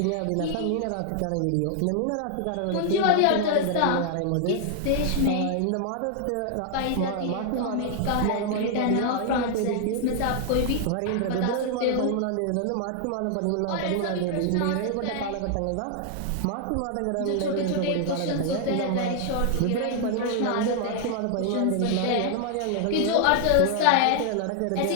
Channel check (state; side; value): different; both; correlation 0.00